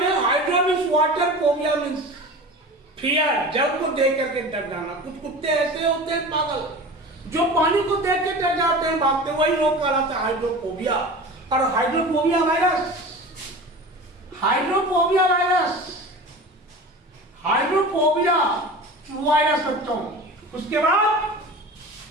Hydro means water, phobia means fear, जल को देख करके डर जाना। कुछ कुत्ते ऐसे होते हैं पागल, जो पानी को देख के डर जाते हैं, भागते, वही रोग कहलाता है हाइड्रोफोबिया। और हाइड्रोफोबिया वायरस बच्चों उसके बाद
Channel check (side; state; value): both; normal; correlation 0.35